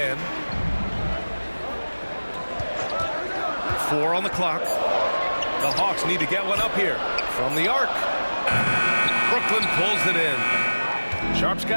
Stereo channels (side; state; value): both; inverted; correlation -1.00